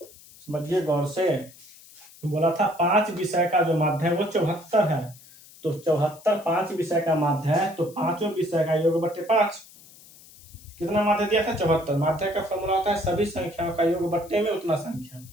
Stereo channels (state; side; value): noise; left; hiss, 22 dB below the sound